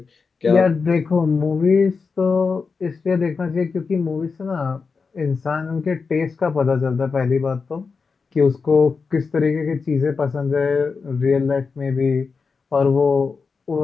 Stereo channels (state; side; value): quieter; right; 4.9 dB